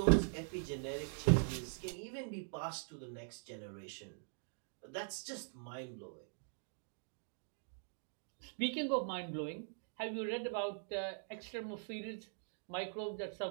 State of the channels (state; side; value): silent; left; digital silence